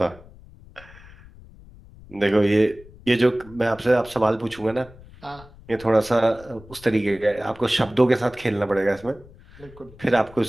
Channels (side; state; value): left; noise; rumble, 21 dB below the sound